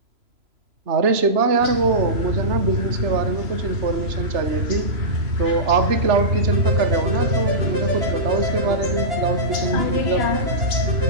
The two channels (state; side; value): late; left; 3.0 ms